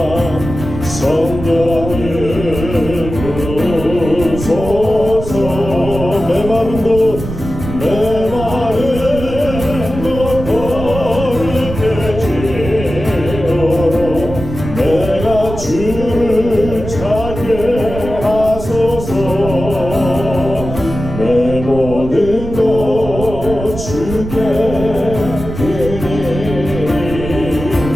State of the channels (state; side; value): noise; right; rumble, 8 dB below the sound